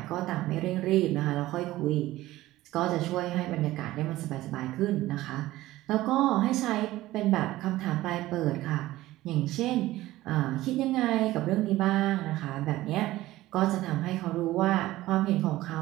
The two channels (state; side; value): quieter; left; 16.5 dB